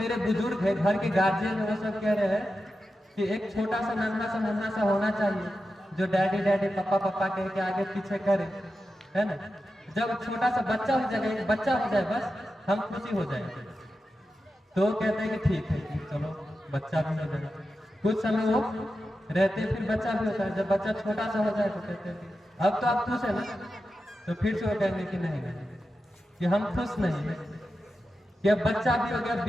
बुजुर्ग है, घर के गार्जियन है, वो सब कह रहे हैं कि एक छोटा सा नन्हा सा होना चाहिए, जो डैडी डैडी पापा पापा कह के आगे पीछे करे, है ना। जब छोटा सा बच्चा हो जाएगा, एक बच्चा हो जाए, बस हम खुशी हो जाएंगे। तो वो कहते हैं कि ठीक है, चलो बच्चा भी हो जाएगा। कुछ समय वो रहते, फिर बच्चा भी होता है। जब बच्चा छोटा सा हो जाए तो कहते हैं कि अब तो आप खुश है ना, तो फिर से वो कहेंगे कि नहीं कि हम खुश नहीं है, कि अब बच्चा भी हो गया,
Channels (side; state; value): both; normal; correlation 0.91